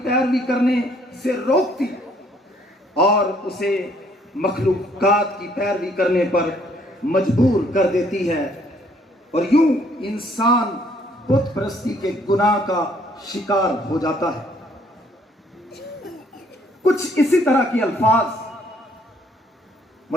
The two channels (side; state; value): both; normal; correlation 0.64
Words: پیروی کرنے سے روکتی اور اسے مخلوقات کی پیروی کرنے پر مجبور کر دیتی ہے، اور یوں انسان بت پرستی کے گناہ کا شکار ہو جاتا ہے۔ کچھ اسی طرح کے الفاظ